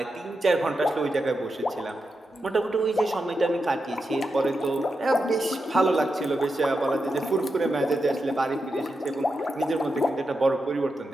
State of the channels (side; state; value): both; normal; correlation 0.88